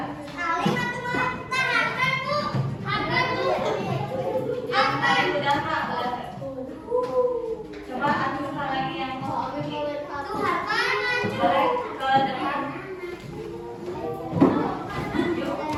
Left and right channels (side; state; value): both; identical; correlation 1.00